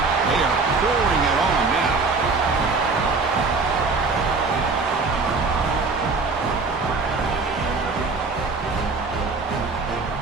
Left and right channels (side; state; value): left; quieter; 4.1 dB